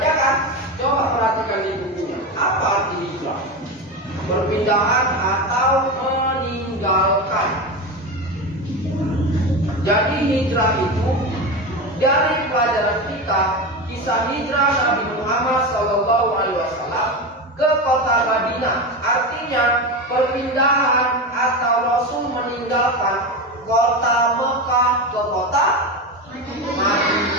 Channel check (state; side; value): normal; both; correlation 0.20